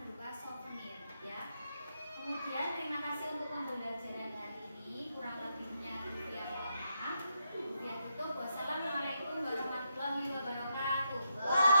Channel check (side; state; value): both; inverted; correlation -0.82